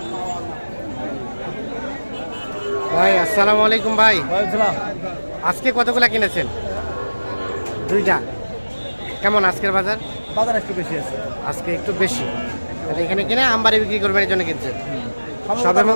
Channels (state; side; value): inverted; both; correlation -1.00